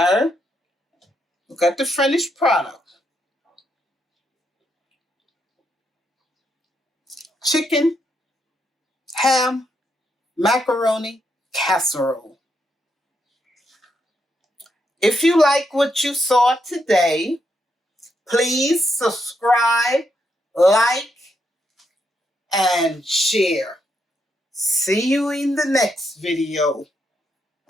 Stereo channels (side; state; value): both; normal; correlation 0.79